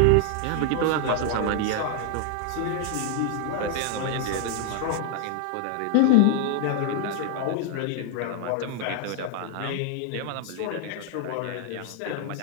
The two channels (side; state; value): both; different; correlation 0.00